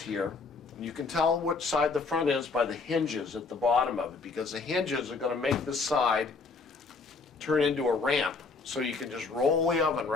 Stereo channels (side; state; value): right; quieter; 4.2 dB